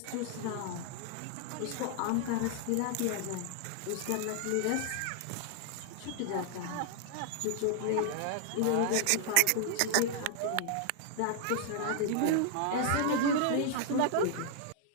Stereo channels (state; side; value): different; both; correlation -0.01